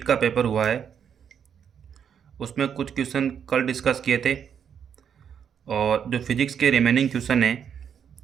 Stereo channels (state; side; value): quieter; left; 7.9 dB